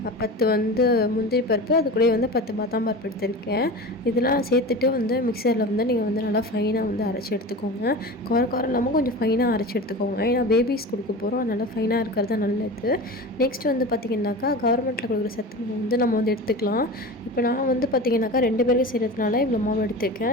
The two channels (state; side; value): normal; both; correlation 0.31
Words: 10 முந்திரி பருப்பு, அது கூட வந்து 10 பாதாம் பருப்பு எடுத்திருக்கேன். இதெல்லாம் சேர்த்துட்டு வந்து மிக்சரில் வந்து நீங்கள் வந்து நல்லா ஃபைனாக வந்து அரைச்சி எடுத்துக்கோங்க. குறை இல்லாமல் கொஞ்சம் ஃபைனாக அரைச்சி எடுத்துக்கோங்க. ஏன்னா பேபிஸ் கொடுக்க போகிறோம், அதனால் ஃபைனாக இருக்கிறது தான் நல்லது. நெக்ஸ்ட் வந்து பார்த்திங்கனாக்கா கவர்மெண்ட்டில் கொடுக்குற சத்து மாவு வந்து நம்ம வந்து எடுத்துக்கலாம். இப்போ நான் வந்து பார்த்திங்கனாக்கா 2 பேருக்கு செய்கிறதுனால இவ்வளோ மாவு